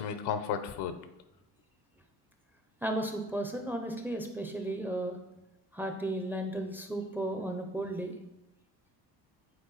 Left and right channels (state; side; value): normal; both; correlation 0.50